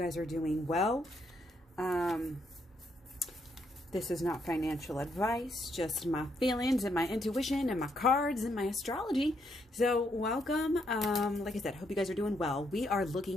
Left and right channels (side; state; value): both; normal; correlation 0.75